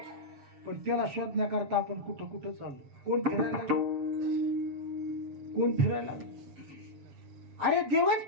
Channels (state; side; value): late; left; 7.3 ms